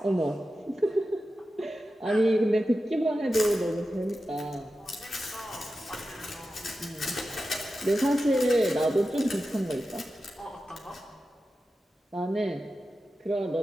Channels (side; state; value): both; normal; correlation 0.92